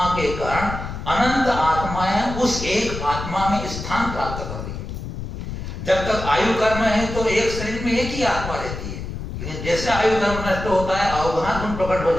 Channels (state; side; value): noise; left; rumble, 7 dB below the sound